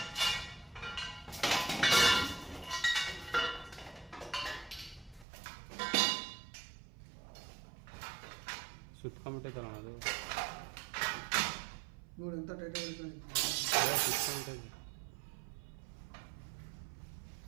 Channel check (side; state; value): left; drops out; at 5.2 s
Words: ಸುತ್ಕೊಂಬಿಟ್ಟೈತಲ್ಲ ಅದು ನೋಡಿ ಎಂತ ಟೈಟ್ ಸುತ್ಕೊಂಬಿಟ್ಟೈತೆ.